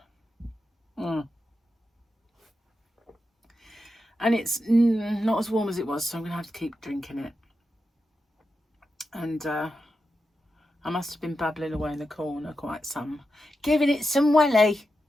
And it's not as warm as it was, so I'm going to have to keep drinking it. And I must have been babbling away in the corner quite some. Giving it some welly.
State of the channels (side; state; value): both; normal; correlation 0.89